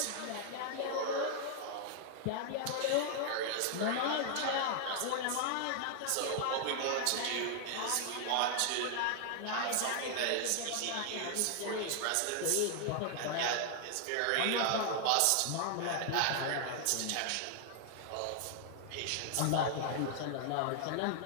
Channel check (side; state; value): both; different; correlation 0.00